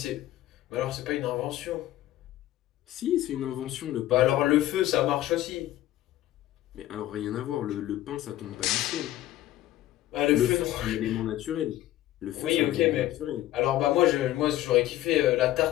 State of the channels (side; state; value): right; quieter; 14.5 dB